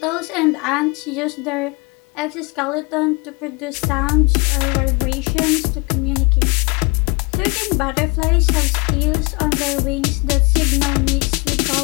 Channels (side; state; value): right; quieter; 29.3 dB